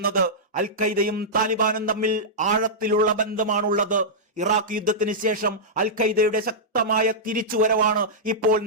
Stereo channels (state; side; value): normal; both; correlation -0.11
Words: അൽ ഖൈദയും താലിബാനും തമ്മിൽ ആഴത്തിലുള്ള ബന്ധമാണുള്ളത്. ഇറാഖ് യുദ്ധത്തിന് ശേഷം അൽ ഖൈദയുടെ ശക്തമായ തിരിച്ചുവരവാണ് ഇപ്പോൾ